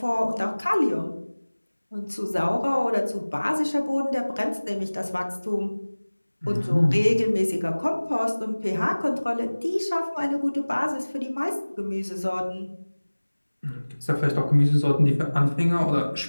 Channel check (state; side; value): inverted; both; correlation -1.00